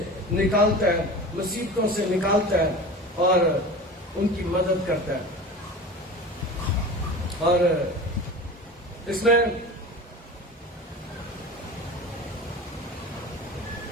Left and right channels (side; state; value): both; normal; correlation 0.34